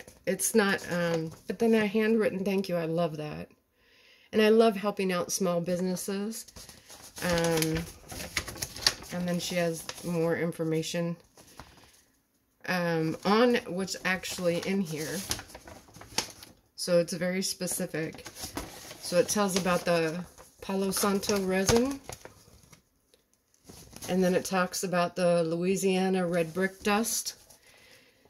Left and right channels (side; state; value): both; identical; correlation 1.00